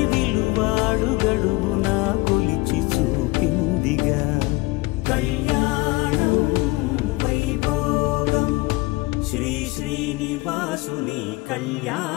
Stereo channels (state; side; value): quieter; right; 22.6 dB